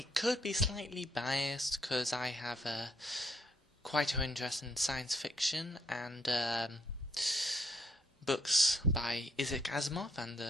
could be slightly biased because I have quite an interest in science fiction and books by Isaac Asimov and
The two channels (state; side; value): normal; both; correlation 0.72